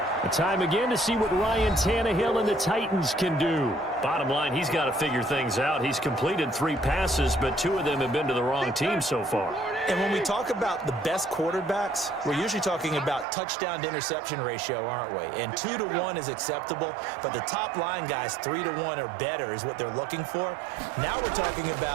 A time again to see what Ryan Tannehill and the Titans can do. Bottom line, he's got to figure things out. He's completed 3 passes, but 2 of them have been to the wrong team so far. And when we talk about the best quarterbacks, we're usually talking about touchdown to interception ratio, aren't we? And 2 to 1 is acceptable, but the top line guys 3 to 1 or better is what they're looking for. Now we're talking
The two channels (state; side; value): drops out; left; at 13.2 s